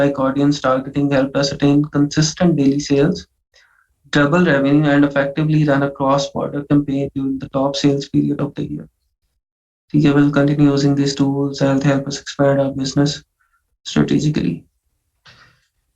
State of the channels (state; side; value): identical; both; correlation 1.00